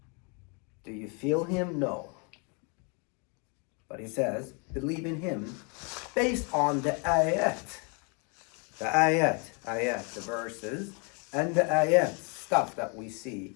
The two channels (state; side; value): quieter; right; 34.9 dB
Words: Do you feel Him? No. But He says, believe in Him based on the ayat. The ayat, the verses, and the ayat, stuff that we see.